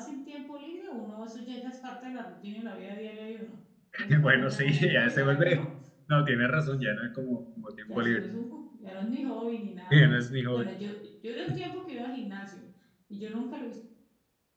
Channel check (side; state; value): both; identical; correlation 1.00